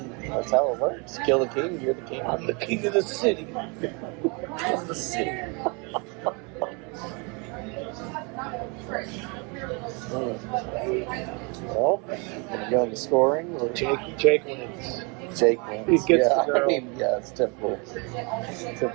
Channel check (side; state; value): left; quieter; 31.8 dB